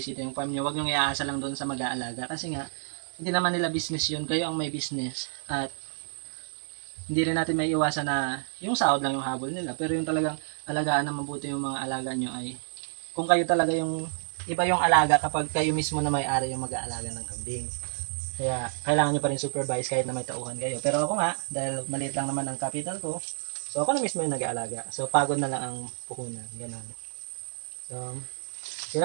yung farm nyo. Huwag nyo iaasa lang doon sa mag-aalaga. Kasi nga, hindi naman nila business yun, kayo ang may business. At hindi rin natin may iwasan na yung sahod lang yung habol nila. Pero yung talagang alagaan na mabuti yung mga alaga nyo ay kung kayo talaga yung iba yung alaga kapag kayo mismo na may-ari yung mag-aalaga ng kambing. Kaya kailangan nyo pa rin supervise kahit na may tauhan kayo. Pero ako nga, dahil maliit lang naman ang capital ko, so ako na mismo yung nag-aalaga. So pagod na lang ang puhunan. Ganon. So, yun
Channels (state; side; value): silent; left; digital silence